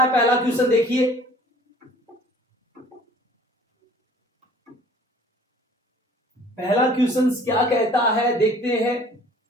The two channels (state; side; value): normal; both; correlation 0.51